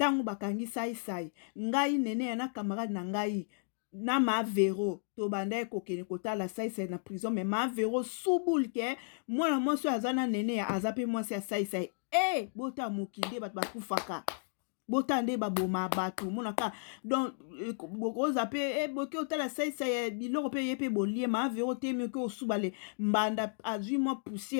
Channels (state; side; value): silent; right; digital silence